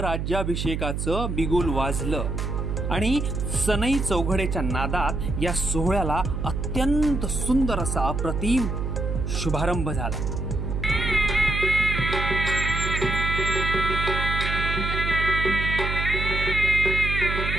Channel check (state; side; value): noise; right; hum, 2 dB below the sound